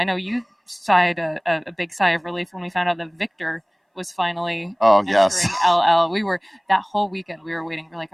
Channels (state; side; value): identical; both; correlation 1.00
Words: know you sighed a big sigh of relief when we found out that Victor was finally entering LL. We were, that whole weekend, we were waiting. We're like,